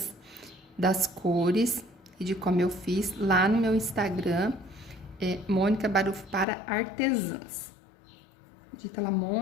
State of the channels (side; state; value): right; drops out; at 6.5 s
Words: das cores e de como eu fiz lá no meu Instagram, Mônica Barufo para artesãs. Digita lá